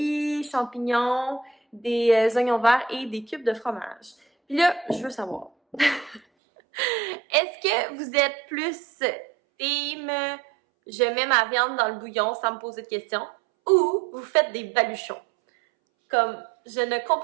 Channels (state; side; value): drops out; left; at 6.2 s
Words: champignons, des oignons verts et des cubes de fromage. Puis là, je veux savoir, est-ce que vous êtes plus team je mets ma viande dans le bouillon sans me poser de questions ou vous faites des baluchons? Comme, je ne